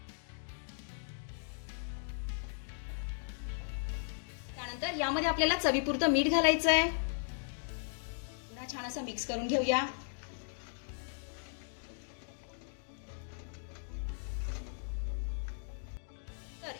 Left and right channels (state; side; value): silent; right; digital silence